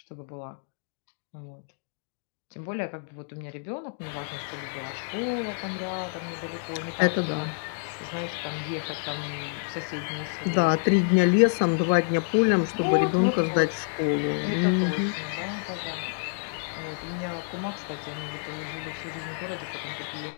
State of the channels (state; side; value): silent; right; digital silence